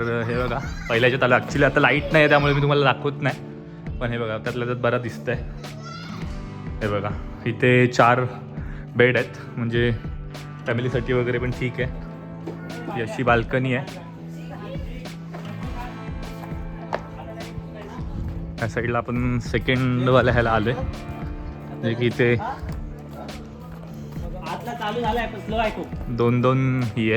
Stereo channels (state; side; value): identical; both; correlation 1.00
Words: हे बघा पहिल्याच्यात आलं. ॲक्च्युली आता लाईट नाही आहे त्यामुळे मी तुम्हाला दाखवत नाही. पण हे बघा त्यातल्या त्यात बरं दिसतंय. हे बघा इथे 4 बेड आहेत म्हणजे फॅमिलीसाठी वगैरे पण ठीक आहे. ही अशी बाल्कनी आहे. या साईडला आपण सेकंडवाल्या ह्याला आलोय जे की इथे आतला चालू झालाय पण स्लो आहे खूप. 2 ही